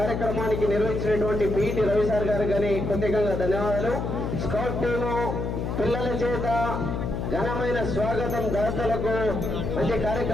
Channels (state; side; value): noise; left; hum, 2 dB below the sound